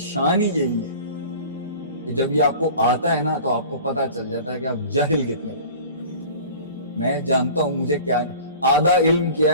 ہی یہی ہے کہ جب یہ آپ کو آتا ہے نا تو آپ کو پتا چل جاتا ہے کہ آپ جاہل کتنے۔ میں جانتا ہوں مجھے کیا، آدھا علم کیا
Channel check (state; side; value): inverted; both; correlation -0.41